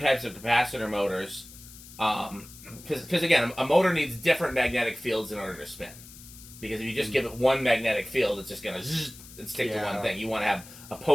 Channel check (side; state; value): left; noise; hiss, 18 dB below the sound